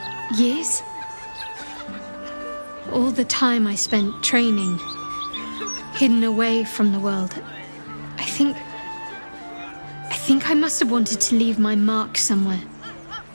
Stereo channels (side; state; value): both; inverted; correlation -1.00